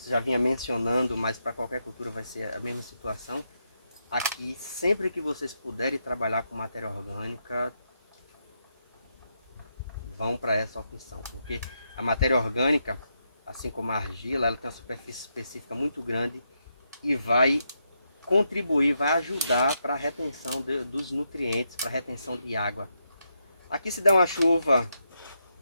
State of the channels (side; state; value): both; inverted; correlation -0.82